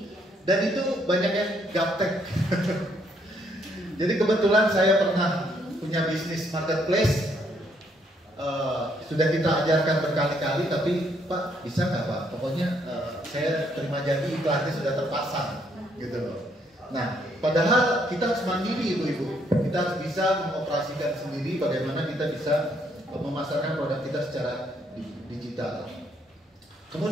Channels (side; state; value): both; normal; correlation 0.71